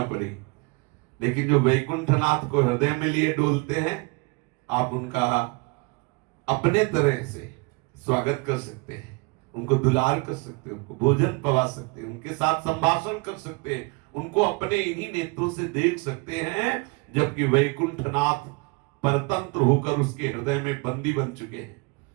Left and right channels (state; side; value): quieter; left; 28.5 dB